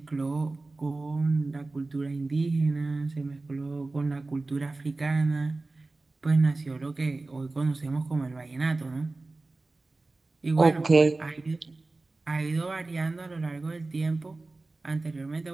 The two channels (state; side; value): quieter; left; 3.3 dB